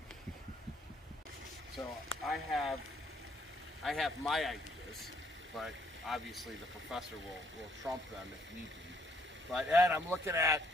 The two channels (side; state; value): both; normal; correlation 0.68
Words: So I have my ideas, but obviously the professor will trump them if need be. But Ed, I'm looking at,